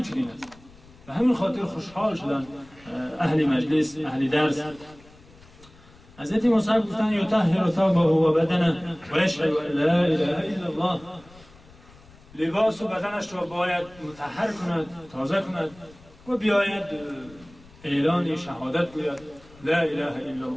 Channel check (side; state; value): left; noise; rumble, 24 dB below the sound